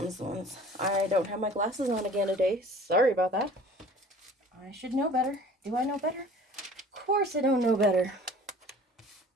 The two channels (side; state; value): both; normal; correlation 0.47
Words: the ones. I don't have my glasses on again today. Sorry about that. I should know better. Do I know better? Of course I don't know better.